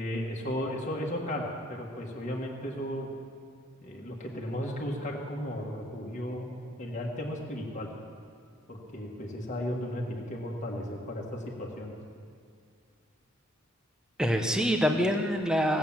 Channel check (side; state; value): both; normal; correlation 0.69